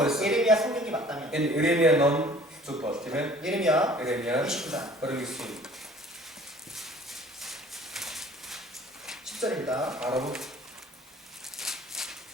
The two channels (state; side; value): normal; both; correlation 0.51